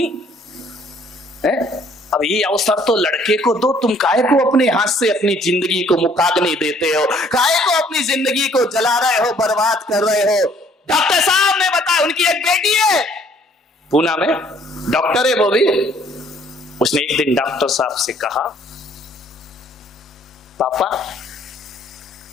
है। अब ये अवसर तो लड़के को दो, तुम काहे को अपने हाथ से अपनी जिंदगी को मुखाग्नि देते हो? काहे को अपनी जिंदगी को जला रहे हो, बर्बाद कर रहे हो? डॉक्टर साहब ने बताया, उनकी एक बेटी है पूना में, डॉक्टर है वो भी। उसने एक दिन डॉक्टर साहब से कहा, पापा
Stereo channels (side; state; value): both; normal; correlation 0.61